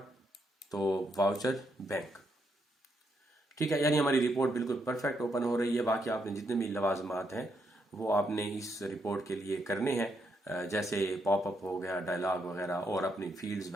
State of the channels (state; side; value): normal; both; correlation 0.78